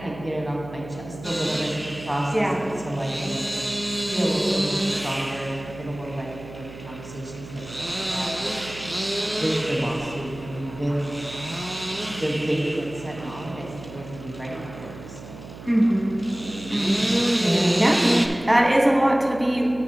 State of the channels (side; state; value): right; noise; hum, 14 dB below the sound